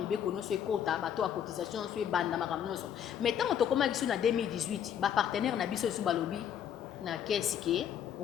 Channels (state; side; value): quieter; right; 9.3 dB